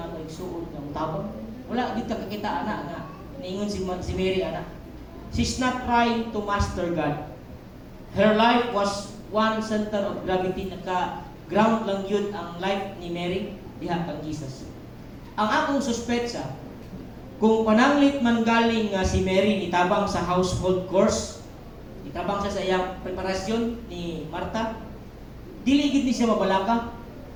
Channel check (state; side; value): identical; both; correlation 1.00